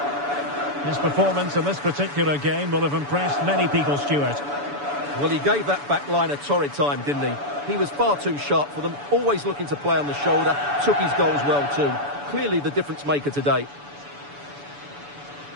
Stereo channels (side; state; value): left; late; 7.0 ms